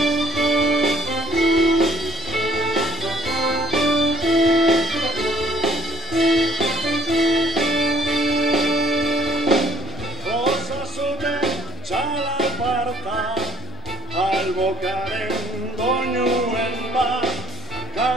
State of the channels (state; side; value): normal; both; correlation 0.60